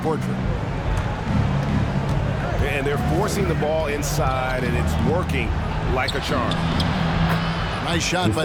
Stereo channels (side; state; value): both; identical; correlation 1.00